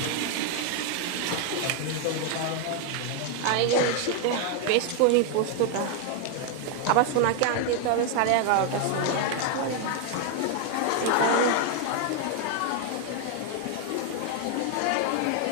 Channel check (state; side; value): different; both; correlation 0.00